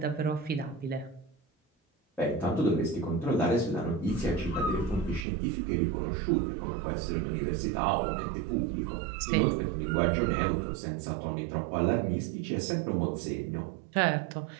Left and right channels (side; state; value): left; drops out; at 5.2 s